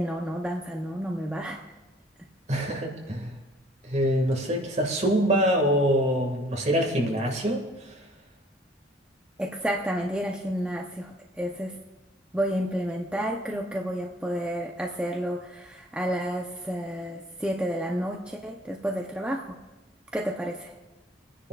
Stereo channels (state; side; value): normal; both; correlation 0.57